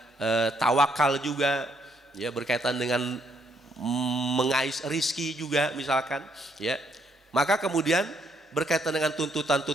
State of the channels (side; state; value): both; normal; correlation 0.71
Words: tawakal juga, ya, berkaitan dengan mengais rizki juga misalkan, ya. Maka kemudian berkaitan dengan